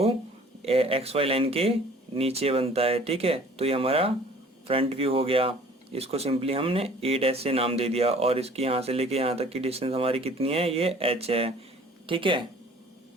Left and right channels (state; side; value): normal; both; correlation 0.51